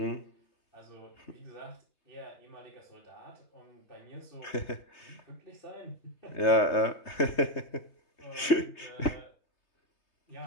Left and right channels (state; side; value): late; right; 3.2 ms